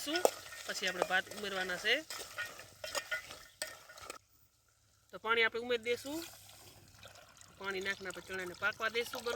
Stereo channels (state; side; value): identical; both; correlation 1.00